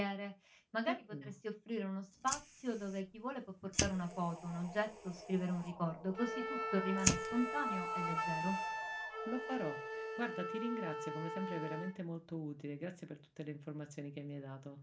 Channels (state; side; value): identical; both; correlation 1.00